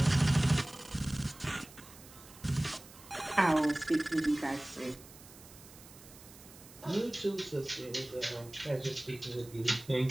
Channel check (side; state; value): right; noise; hiss, 20 dB below the sound